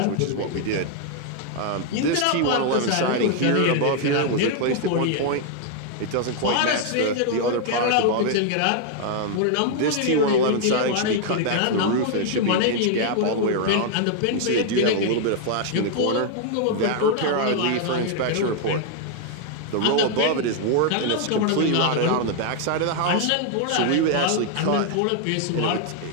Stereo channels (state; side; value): different; both; correlation 0.00